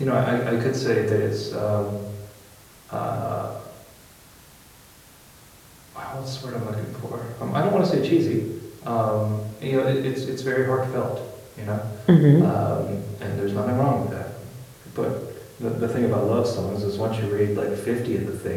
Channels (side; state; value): both; identical; correlation 1.00